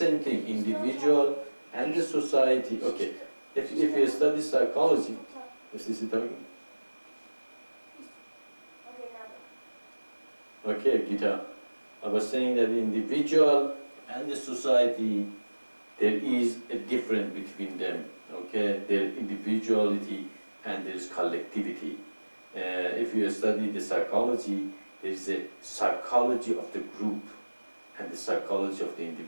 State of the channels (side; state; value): both; inverted; correlation -1.00